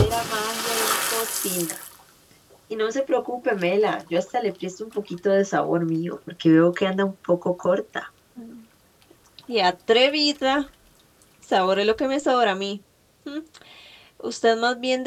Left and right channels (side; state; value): both; identical; correlation 1.00